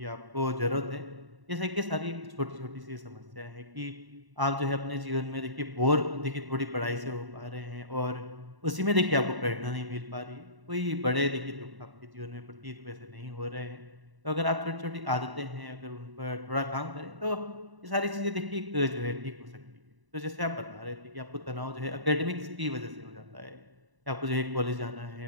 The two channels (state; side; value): late; left; 1.0 ms